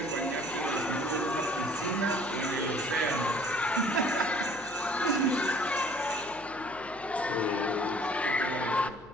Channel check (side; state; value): left; noise; hum, 21 dB below the sound